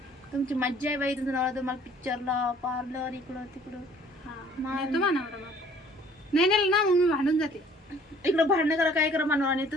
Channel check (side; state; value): both; normal; correlation 0.56